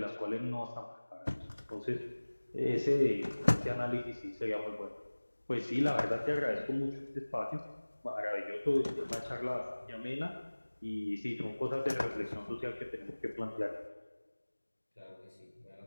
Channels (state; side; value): inverted; both; correlation -1.00